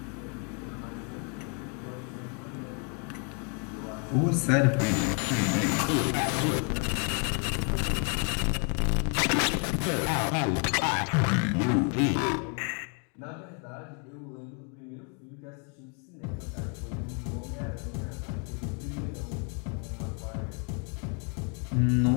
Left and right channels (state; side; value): quieter; right; 38.5 dB